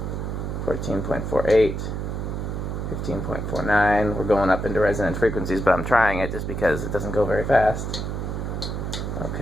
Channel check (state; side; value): noise; right; hum, 3 dB below the sound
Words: 14.48, 15.49. We're going up into resonant frequencies, but I'm trying it just because it doesn't go very fast.